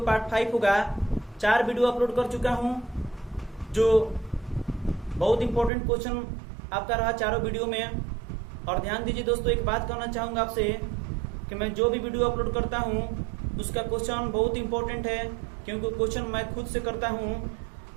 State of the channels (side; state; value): left; drops out; at 5.7 s